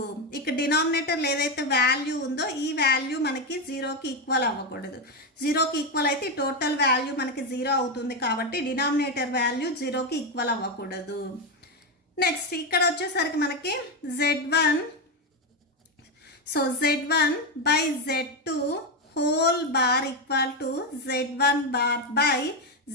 ఇక్కడ డినామినేటర్లో ఏదైతే వాల్యూ ఉందో ఈ వాల్యూ మనకి 0కి ఈక్వల్ అవ్వకూడదు. 0కి ఈక్వల్ అయితే టోటల్ వాల్యూ మనకి 0 అవుతుంది కాబట్టి డినామినేటర్ వాల్యూ 0కి ఈక్వల్ అవ్వకూడదు. నెక్స్ట్ ఇక్కడ వచ్చేసరికి మనకి Z1, so Z1 by Z2 whole bar equal to Z1 bar by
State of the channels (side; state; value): both; normal; correlation 0.09